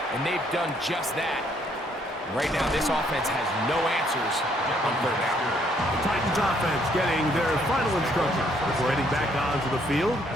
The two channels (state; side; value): normal; both; correlation 0.68